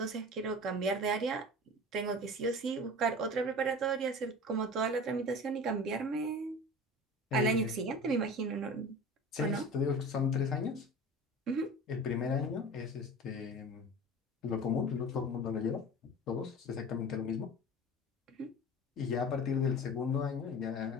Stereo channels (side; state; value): both; normal; correlation 0.36